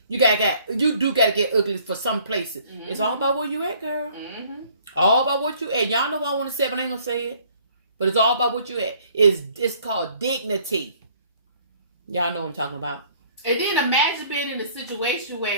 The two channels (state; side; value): inverted; both; correlation -0.58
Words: You do got to get ugly for some places. It's all about where you at, girl. All about what you at. Y'all know what I want to say, but I ain't going to say it. But it's all about what you at. It's called dignity. Y'all know what I'm talking about. And then imagine being in a situation